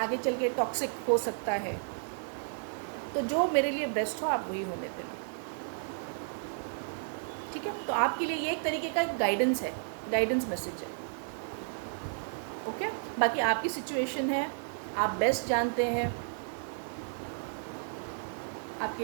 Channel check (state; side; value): silent; left; digital silence